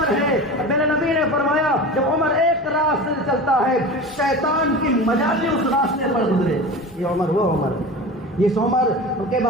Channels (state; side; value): normal; both; correlation 0.32